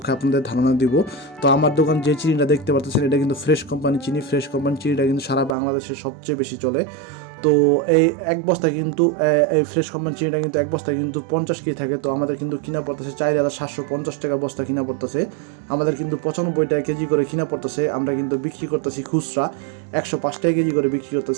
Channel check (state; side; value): drops out; left; at 5.6 s